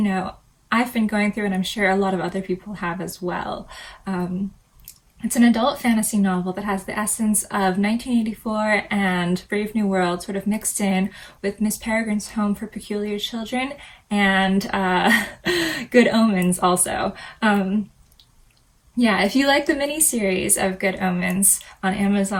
I've been going through, and I'm sure a lot of other people have as well. It's an adult fantasy novel that has the essence of 1984 and Brave New World sort of mixed in with Miss Peregrine's Home for Peculiar Children and Good Omens also. If you like the mini-series of Good Omens on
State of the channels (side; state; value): both; identical; correlation 1.00